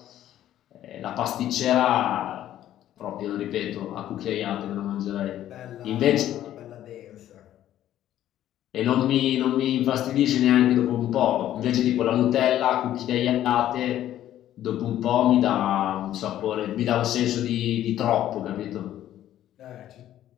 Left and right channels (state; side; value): quieter; right; 12.3 dB